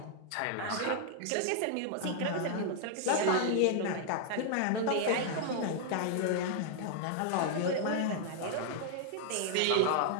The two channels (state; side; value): different; both; correlation 0.00